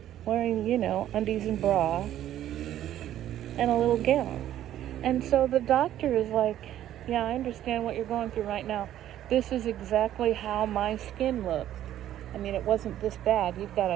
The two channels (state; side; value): quieter; left; 12.1 dB